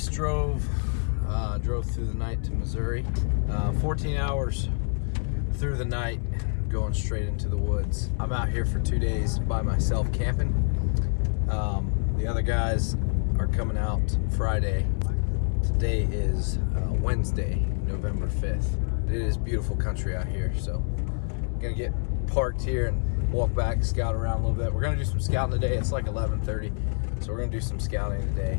drove through the night to Missouri. 14 hours through the night, going straight into the woods. I'm out here for 2 days by myself camping. The other guys are coming out Friday. Today is Wednesday, November 5th. It is beautiful country out here, so I'm gonna get parked here and walk back, scout around a little bit. We're gonna do some scouting today. It's like 11:30, so we're gonna do some scouting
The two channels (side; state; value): right; silent; 60 dB below the other